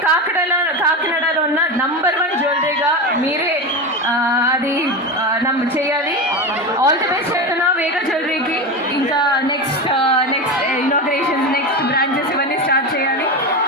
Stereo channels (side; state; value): both; normal; correlation 0.20